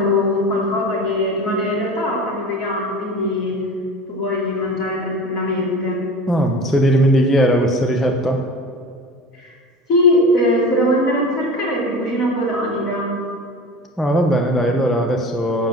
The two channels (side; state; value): both; normal; correlation 0.35